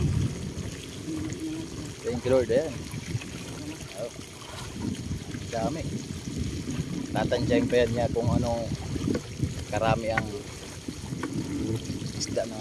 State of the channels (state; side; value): identical; both; correlation 1.00